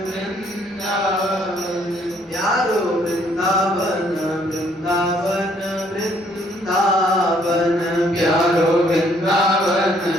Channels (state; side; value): normal; both; correlation 0.65